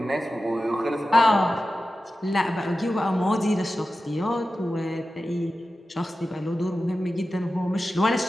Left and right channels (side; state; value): both; normal; correlation 0.94